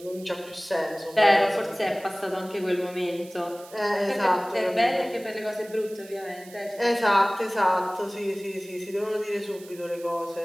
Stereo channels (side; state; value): right; noise; hiss, 21 dB below the sound